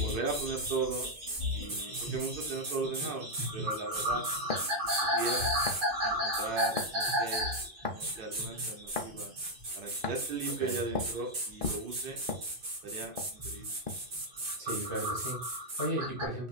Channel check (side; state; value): left; late; 2.5 ms